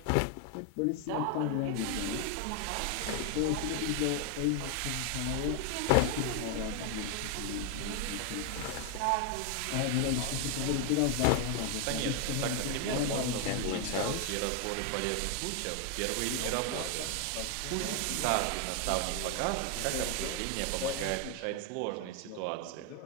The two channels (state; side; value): different; both; correlation 0.01